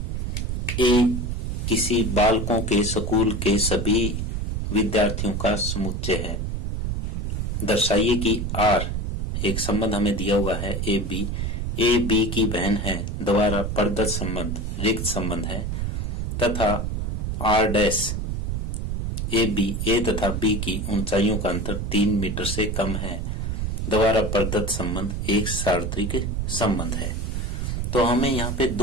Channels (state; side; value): noise; right; rumble, 2 dB below the sound